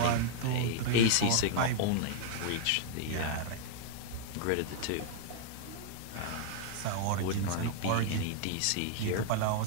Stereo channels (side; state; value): both; different; correlation -0.01